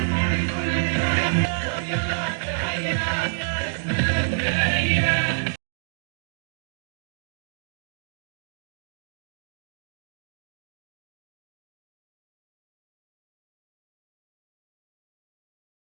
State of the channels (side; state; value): left; silent; digital silence